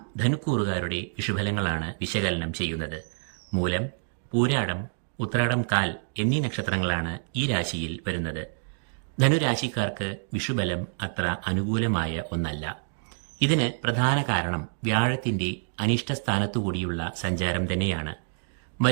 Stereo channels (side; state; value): left; silent; digital silence